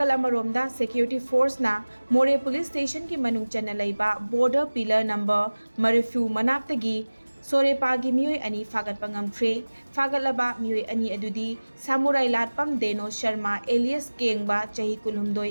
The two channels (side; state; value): both; inverted; correlation -1.00